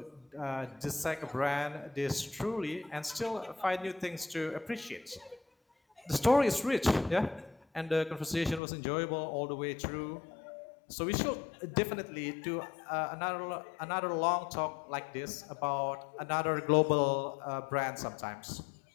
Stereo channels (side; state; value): right; drops out; at 8.6 s